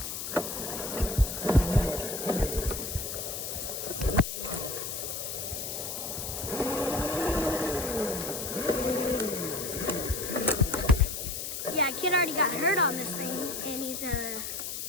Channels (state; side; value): noise; left; hiss, 5 dB below the sound